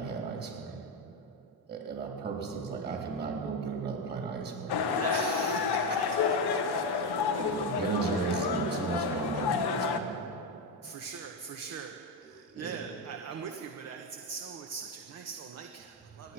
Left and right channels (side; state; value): both; normal; correlation 0.10